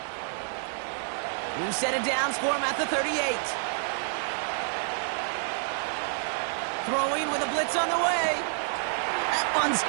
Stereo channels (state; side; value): silent; left; digital silence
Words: New set of downs for him at the 38. Throwing with a blitz on the way. That one's